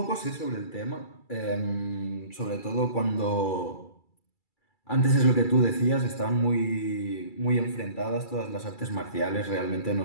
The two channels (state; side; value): late; right; 2.3 ms